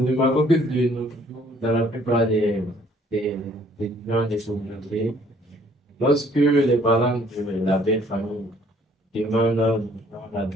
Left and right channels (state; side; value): normal; both; correlation 0.61